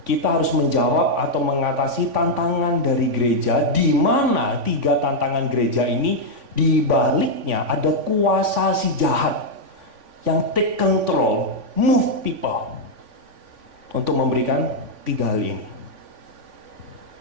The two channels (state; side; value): late; left; 3.5 ms